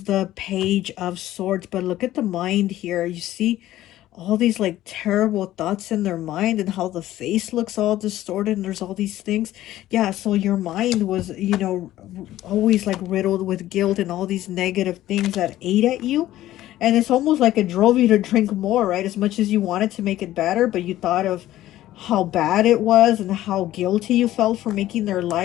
the Page of Swords, but look at the mind here. You see all these like terrible thoughts in their mind, and how the face looks all distorted, and there's all these things. Yeah, so your mind was, you know, always like riddled with guilt and all these negative things that ate at you. And it's almost like it drove you to drink more, right? As much as you wanted to make it better, but you thought of how bad it was and how guilty you felt for making their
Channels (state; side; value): quieter; right; 14.4 dB